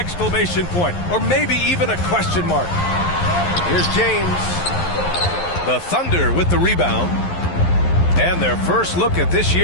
point, or maybe even a question mark. Here's James. The Thunder with the rebound. And their first look at this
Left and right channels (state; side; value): late; right; 11 ms